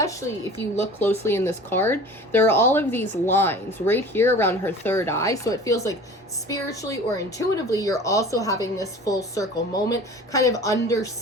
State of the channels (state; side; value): normal; both; correlation 0.41